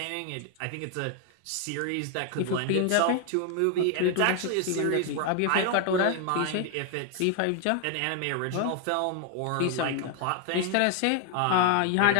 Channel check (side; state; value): both; different; correlation 0.00